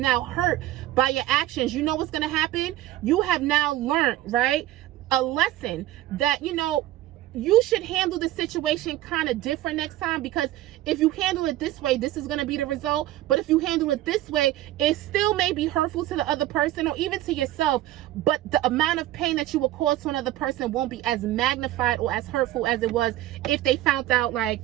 hurt by your actions, you know what's going to happen? You have now learned, right, a lesson that, you know, you should handle the situation kind of different next time, because if you handle it this way, this is going to be the result. But if you handle it this way, it still may be hurtful to the other person or even to yourself, but the amount of pain that you will cause to another person won't be as magnified or as hurtful as it was if they found out, like,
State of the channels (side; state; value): left; quieter; 14.8 dB